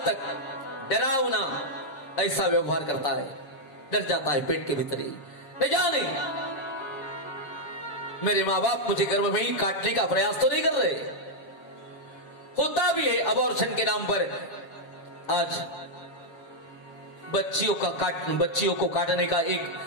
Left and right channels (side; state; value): right; late; 7.3 ms